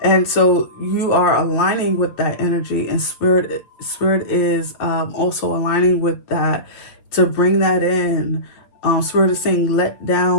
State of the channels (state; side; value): late; right; 8.3 ms